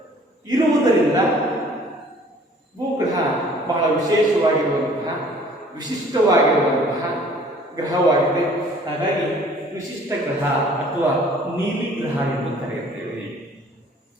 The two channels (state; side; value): normal; both; correlation 0.54